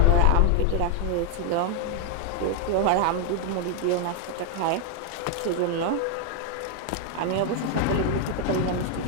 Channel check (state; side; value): different; both; correlation 0.00